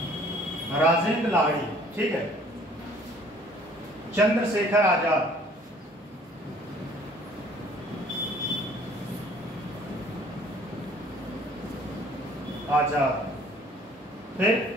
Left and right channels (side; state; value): both; normal; correlation 0.55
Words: राजेंद्र लाहिड़ी, ठीक है। चंद्रशेखर आजाद, फिर